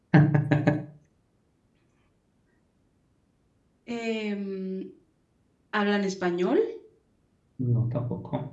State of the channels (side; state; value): both; identical; correlation 1.00